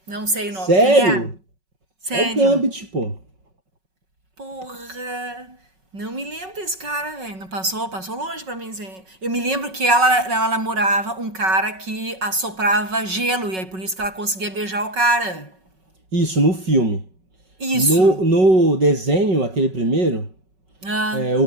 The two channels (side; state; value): left; late; 5.4 ms